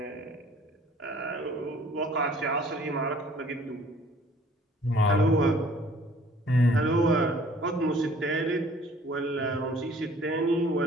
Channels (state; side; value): normal; both; correlation 0.55